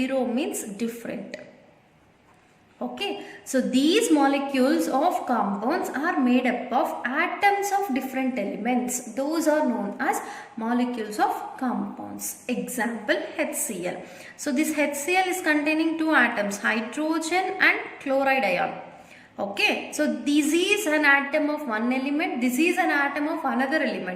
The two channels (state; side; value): identical; both; correlation 1.00